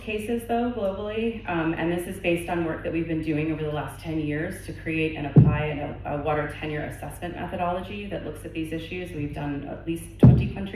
cases, though, globally, and this is based on work that we've been doing over the last 10 years to create and apply a water tenure assessment methodology that looks at these issues. We've done at least 20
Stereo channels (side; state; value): both; identical; correlation 1.00